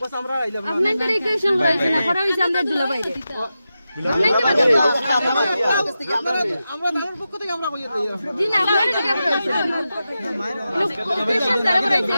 আমরা আইলা আপনাই করে ইকুয়েশন করাইছেন না করা হইছে আমরা দুলাভাই রে আমরা দারুর পক্ষ থেকে আমরা কইয়া দেই জি না আপনারা কি করেছেন ইকুয়েশন দ্বারা করাইছে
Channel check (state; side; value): inverted; both; correlation -0.91